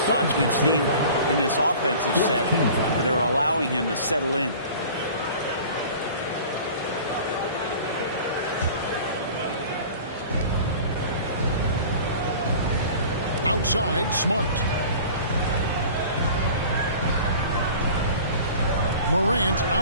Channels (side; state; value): both; inverted; correlation -0.43